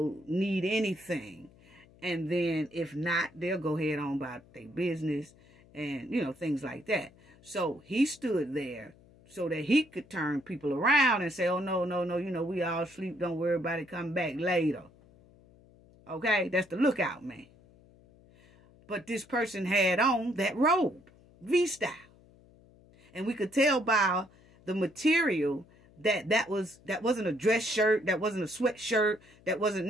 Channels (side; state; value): left; noise; hum, 27 dB below the sound